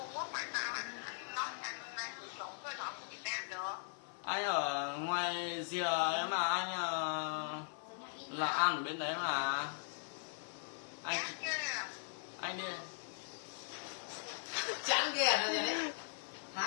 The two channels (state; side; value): silent; right; digital silence